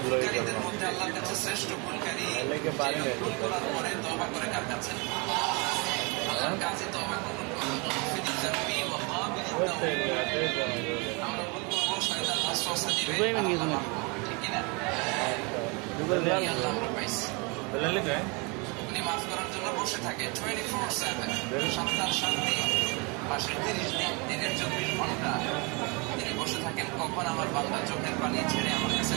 ভুলকারীদের মধ্যে আল্লাহর কাছে শ্রেষ্ঠ ভুলকারী ভুল করার পরে তওবা করে কার কাছে? আল্লাহর কাছে তওবা কবুল করেন। আমরা ভুল করবো, শয়তান ওয়াসওয়াসা দিবে, ঠিক কিনা? আল্লাহ আমরা পাইছি। উনি মাফ করার জন্য বসে থাকে 24/7, 7 দিন, মাসের 30 দিন, দিনের 24 ঘন্টা তিনি বসে থাকেন। কখন আমার বান্দা চোখের পানি ছেড়ে আমার কাছে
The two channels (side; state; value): left; quieter; 30.3 dB